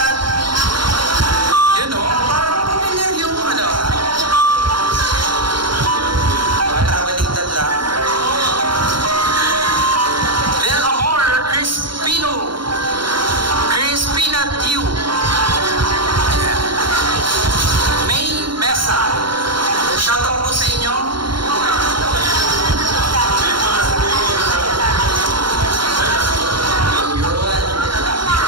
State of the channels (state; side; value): late; left; 0.73 ms